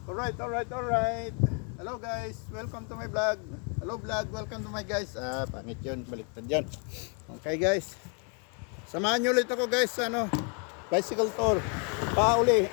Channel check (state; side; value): quieter; right; 38.5 dB